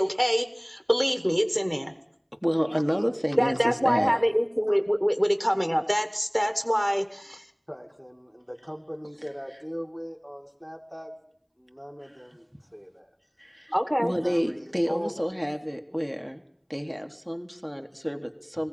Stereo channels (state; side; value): identical; both; correlation 1.00